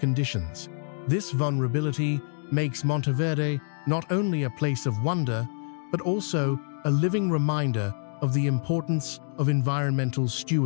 This vulnerability makes Monteverde not only a place of wonder, but also a living reminder of the importance of environmental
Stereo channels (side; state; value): right; silent; digital silence